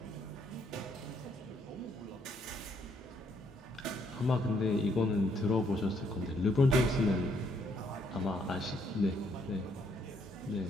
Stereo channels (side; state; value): both; normal; correlation 0.70